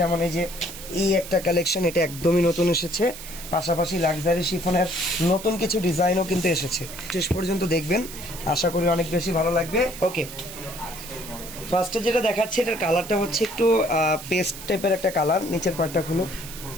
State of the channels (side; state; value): right; noise; hiss, 13 dB below the sound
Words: যেমন এই যে এই একটা কালেকশন, এটা একদমই নতুন এসেছে। পাশাপাশি লাক্সারি শিফনের নতুন কিছু ডিজাইনও কিন্তু এসেছে। শেষ পর্যন্ত দেখবেন, আশা করি অনেক বেশি ভালো লাগবে। ওকে, ফার্স্টে যেটা দেখাচ্ছে, এটার কালারটা হচ্ছে একটু পেস্ট টাইপের একটা কালার। নিচের পার্টটা খুলো।